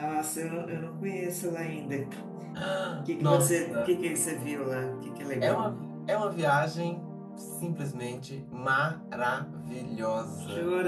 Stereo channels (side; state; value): both; identical; correlation 1.00